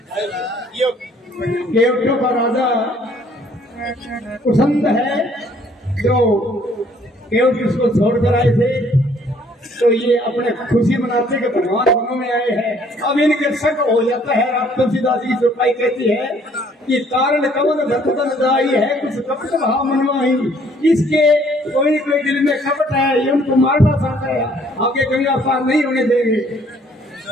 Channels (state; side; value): normal; both; correlation 0.61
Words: केवटों का राजा कुसंद है, जो केवट इसको छोड़कर आए थे, तो ये अपने खुशी मनाते के भगवान वनों में आए हैं। अब इनके शक हो जाता है। अब तुलसीदास की चौपाई कहती है कि कारण कमन धतन जाई है, कुछ कपट भाव मनवाही। इसके कोई कोई दिल में कपट है, ये उनको मारना चाहता है, आगे गंगा पार नहीं होने देंगे।